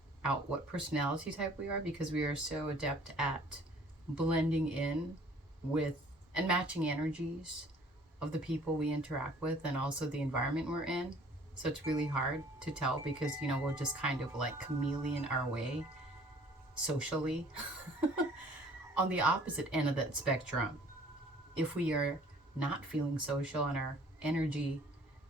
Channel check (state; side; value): normal; both; correlation 0.54